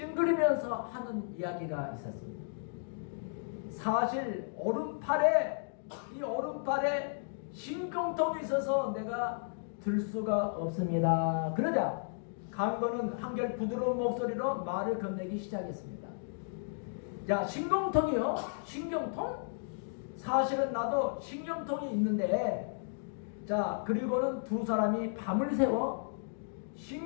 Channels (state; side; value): silent; right; digital silence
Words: 하는 이야기가 있었습니다. 사실 이 오른팔에 신경통이 있어서 내가 들 수가 없습니다. 그러자 강도는 한결 부드러운 목소리로 말을 건네기 시작했습니다. 자, 신경통이요? 신경통? 사실은 나도 신경통이 있는데, 자, 그리고는 두 사람이 밤을 새워